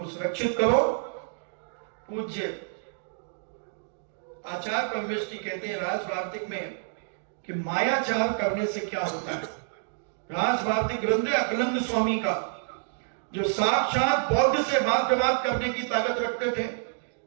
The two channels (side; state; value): left; silent; digital silence